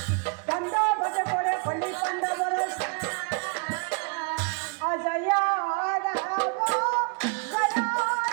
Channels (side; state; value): left; quieter; 36.6 dB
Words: দণ্ড ঘট করে কলি পাণ্ডবৰ অজয়